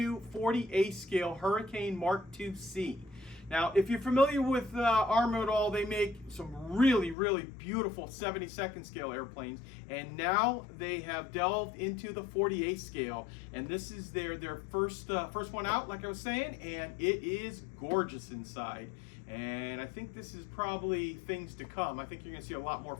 40A scale Hurricane Mark II-C. Now, if you're familiar with Arma at all, they make some really beautiful 72nd scale airplanes, and now they have delved into the 40A scale, and this is their first one out, like I was saying, and it is gorgeous inside. And I think this is probably things to come. I think you're going to see a lot more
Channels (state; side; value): drops out; right; at 7.2 s